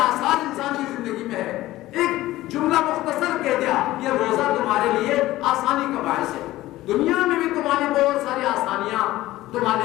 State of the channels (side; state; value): right; quieter; 16.4 dB